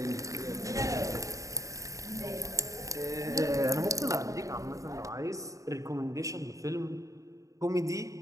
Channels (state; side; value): late; left; 0.16 ms